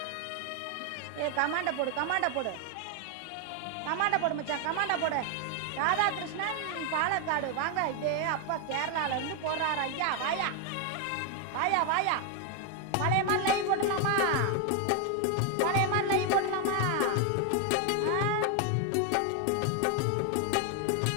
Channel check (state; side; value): different; both; correlation 0.01